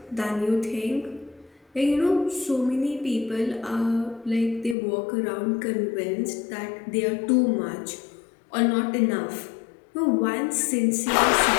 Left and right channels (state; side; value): drops out; right; at 4.8 s